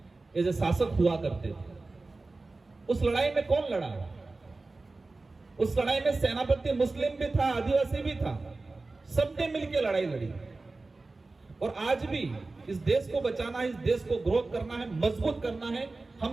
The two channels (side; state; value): left; quieter; 3.4 dB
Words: ये जो शासक हुआ करते थे, उस लड़ाई में कौन लड़ा? उस लड़ाई में सेनापति मुस्लिम भी था, आदिवासी भी था, सबने मिलकर लड़ाई लड़ी। और आज भी इस देश को बचाना है, इस देश को ग्रोथ करना है, मजबूत करना है,